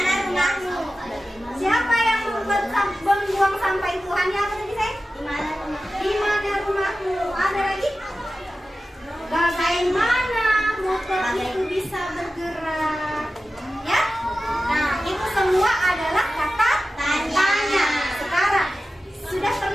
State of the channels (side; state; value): both; normal; correlation 0.94